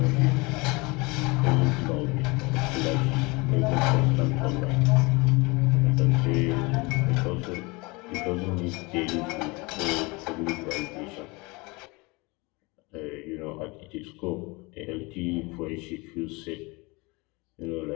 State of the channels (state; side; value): quieter; right; 25.9 dB